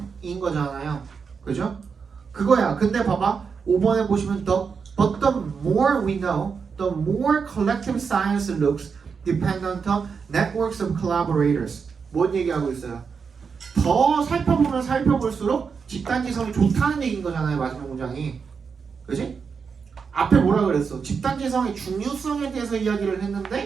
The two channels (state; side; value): quieter; left; 5.8 dB